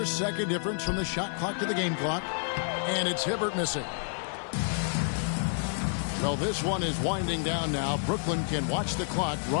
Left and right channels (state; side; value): silent; right; digital silence